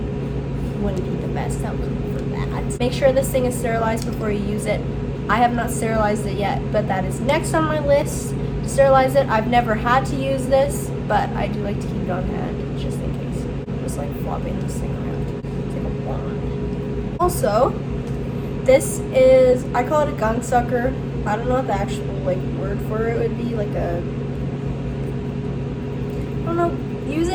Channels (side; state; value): both; identical; correlation 1.00